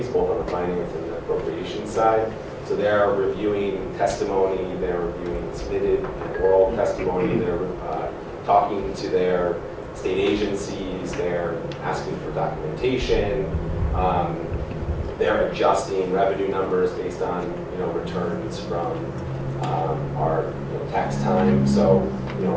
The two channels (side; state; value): both; identical; correlation 1.00